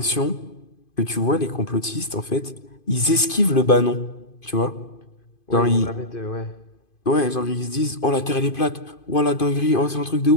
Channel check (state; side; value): late; right; 2.5 ms